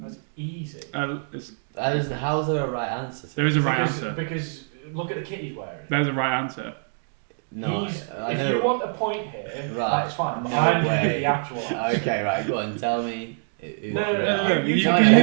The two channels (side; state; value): left; silent; digital silence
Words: easy. How's there a right answer? There is a right answer. Because look at the kit he's wearing. There's a right answer. No, I if know. you want a point here, Right. that's fine. No I'm going to way. give the actual answer. Okay, right, go on, tell me. No. You Tell can me